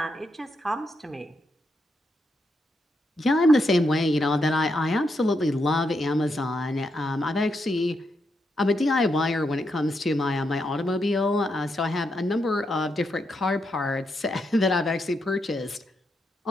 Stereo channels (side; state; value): both; normal; correlation 0.82